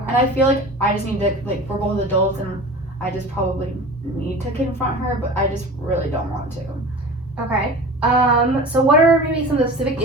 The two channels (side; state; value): both; normal; correlation 0.36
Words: And I feel like I just need to, like, we're both adults and I just probably need to confront her, but I just really don't want to. Okay. So what are maybe some of the specific